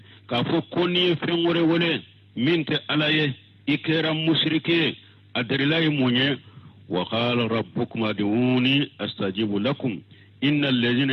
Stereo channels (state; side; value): identical; both; correlation 1.00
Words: ka fo koni fengore wole minte alaye ikera mushrike adrilahi munye وقال ربكم ادعوني استجيب لكم ان الذين